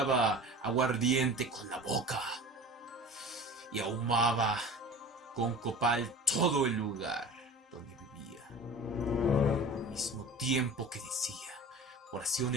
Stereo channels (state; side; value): normal; both; correlation 0.38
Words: aguardiente con la boca y ahumaba con copal todo el lugar donde vivía, al mismo tiempo que decía